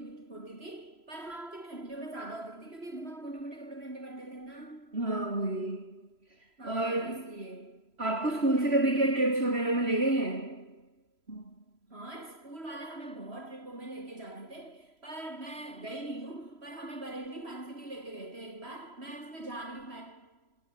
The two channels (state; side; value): late; left; 3.0 ms